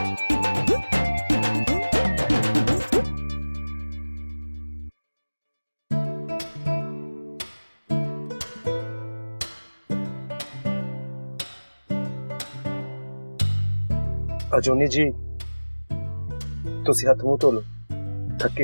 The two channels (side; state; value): both; inverted; correlation -1.00